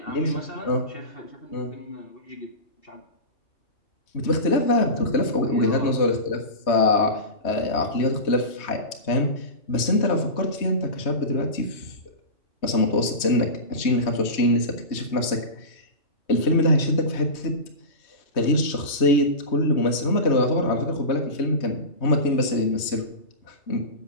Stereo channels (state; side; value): late; right; 3.2 ms